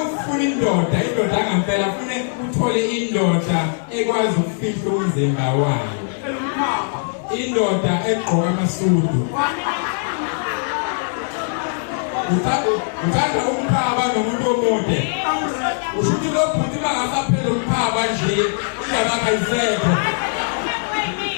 indoda angempela ufune uthole indoda ekwazi ukufihla umzimba wayo. Indoda egqoka amasudu. Uthanda umkhaba nomuntu omude. Ushuthi lo bhuti bangasaphela umkhaba nje iyabakha isekho.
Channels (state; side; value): silent; right; digital silence